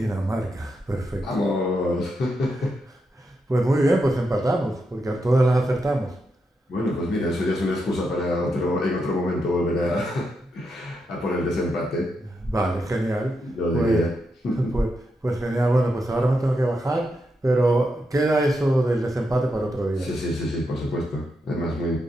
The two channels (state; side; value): normal; both; correlation 0.84